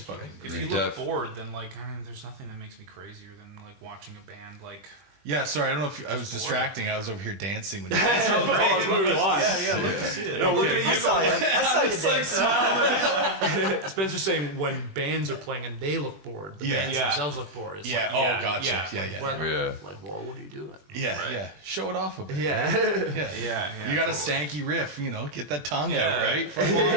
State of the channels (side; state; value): left; late; 20 ms